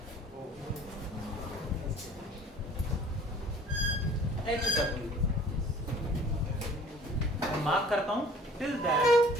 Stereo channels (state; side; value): normal; both; correlation 0.50